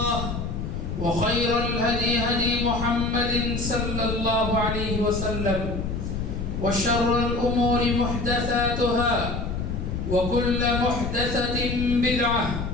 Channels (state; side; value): noise; left; rumble, 4 dB below the sound